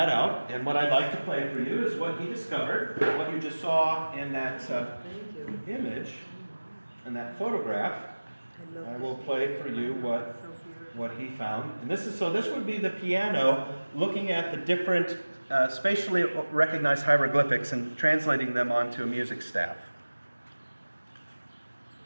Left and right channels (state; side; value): inverted; both; correlation -1.00